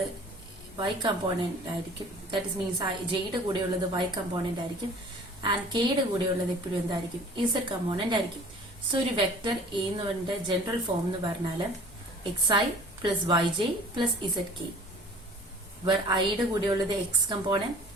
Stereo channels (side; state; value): both; normal; correlation 0.47